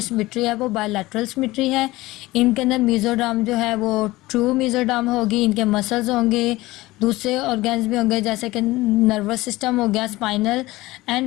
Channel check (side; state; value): right; quieter; 19.0 dB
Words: सिमेट्री है वो बायलैटरल सिमेट्री है। इनके अंदर मेसोडर्म जो है वो ट्रू मेसोडर्म होगी, इनके मसल्स होंगे, दूसरे ऑर्गन्स भी होंगे जैसे कि नर्वस सिस्टम हो गया, स्पाइनल